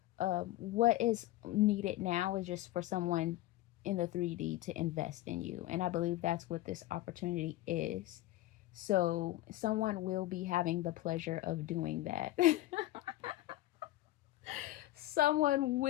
what is needed now is just for someone in the 3D to invest in you. And I believe that's what this opportunity is. So someone will be having the pleasure of doing that. Someone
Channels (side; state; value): right; quieter; 16.2 dB